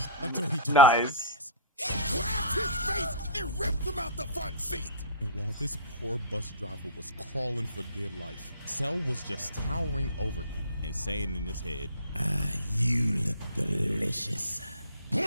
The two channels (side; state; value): both; inverted; correlation -0.39